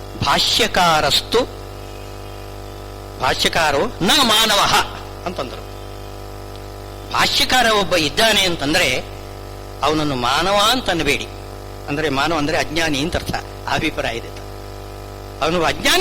ಭಾಷ್ಯಕಾರೋ ನ ಮಾನವ ಅಂತಂದರು. ಭಾಷ್ಯಕಾರ ಒಬ್ಬ ಇದ್ದಾನೆ ಅಂತಂದ್ರೆ ಅವನನ್ನು ಮಾನವ ಅಂತ ಅನ್ನಬೇಡಿ. ಅಂದ್ರೆ ಮಾನವ ಅಂದ್ರೆ ಅಜ್ಞಾನಿ ಅಂತ ಅರ್ಥ, ಅಭಿಪ್ರಾಯ ಇದೆ. ಅವನು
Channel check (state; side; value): identical; both; correlation 1.00